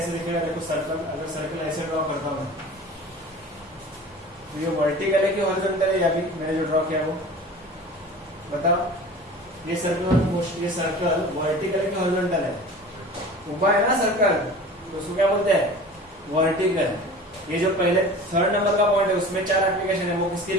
दिखेगा, देखो सर्कल, अगर सर्कल ऐसे ड्रॉ करता हूं तो ये वर्टिकल है कि हॉरिजॉन्टल है, या भी मैंने जो ड्रॉ किया वो बताओ. ये सर्कुलर मोशन, ये सर्कल वर्टिकल है कि हॉरिजॉन्टल है, ऊपर है ना सर्कल, तो उसको क्या बोलते हैं, वर्टिकल. ये जो पहले थर्ड नंबर का पॉइंट है उसमें 4 एप्लीकेशन है, वो किसके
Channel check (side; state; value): both; normal; correlation 0.39